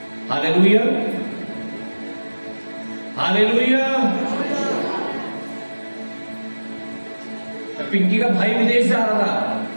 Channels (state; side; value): inverted; both; correlation -1.00